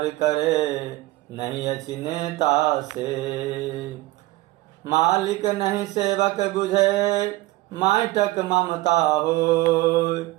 करे, नहीं अछि नेता से। मालिक नहीं सेवक बुझे, माटक ममता हो।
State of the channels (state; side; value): quieter; left; 18.9 dB